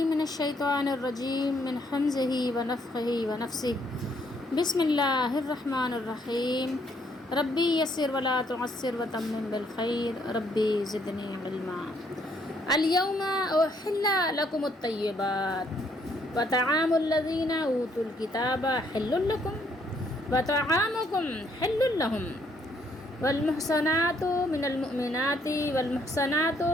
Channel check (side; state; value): both; normal; correlation 0.69